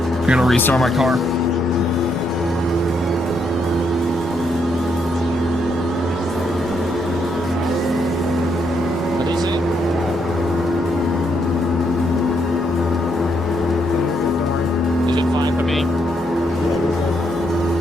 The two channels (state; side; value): noise; right; rumble, 26 dB below the sound